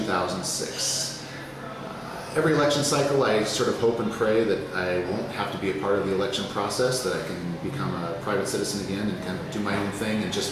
Every election cycle, I sort of hope and pray that I won't have to be a part of the election process, that I can become a private citizen again and kind of do my own thing and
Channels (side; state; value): both; identical; correlation 1.00